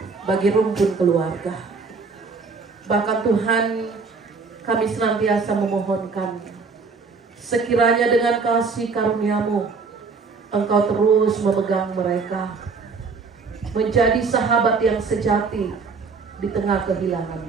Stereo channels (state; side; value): quieter; left; 4.7 dB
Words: bagi rumpun keluarga. Bahkan Tuhan, kami senantiasa memohonkan, sekiranya dengan kasih karunia-Mu, Engkau terus memegang mereka, menjadi sahabat yang sejati di tengah kehilangan